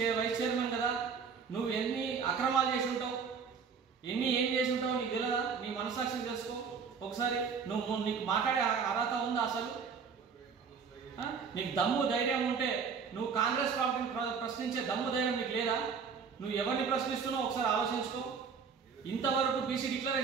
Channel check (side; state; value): left; quieter; 6.0 dB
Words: వైస్ చైర్మన్ కదా, నువ్వు ఎన్ని అక్రమాలు చేసి ఉంటావు, ఏం చేసి ఉంటావు నీకు తెలియదా? నీ మనసాక్షి తెలుసుకో ఒకసారి. నీకు మాట్లాడే అర్హత ఉందా అసలు? నీకు దమ్ము ధైర్యం ఉంటే నువ్వు కాంగ్రెస్ పార్టీని ప్రశ్నించే దమ్ము ధైర్యం నీకు లేదా? నువ్వు ఎవరిని ప్రశ్నిస్తున్నావు ఒకసారి ఆలోచించుకో. ఇంతవరకు బీసీ